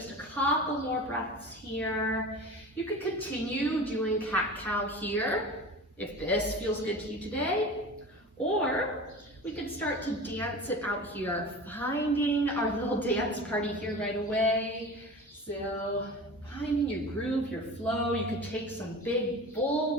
a couple more breaths here. You could continue doing cat-cow here, if this feels good to you today, or we could start to dance it out here, finding our little dance party here right away. So finding your groove, your flow. You could take some big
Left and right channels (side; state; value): both; normal; correlation 0.35